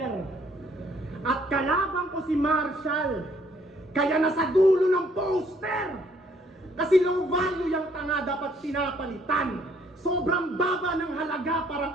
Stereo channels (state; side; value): normal; both; correlation 0.64